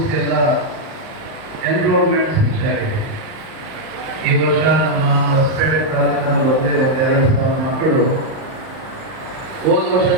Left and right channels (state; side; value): late; left; 38 ms